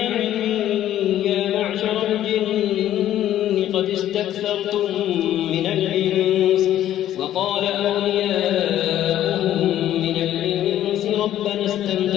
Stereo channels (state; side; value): quieter; right; 12.2 dB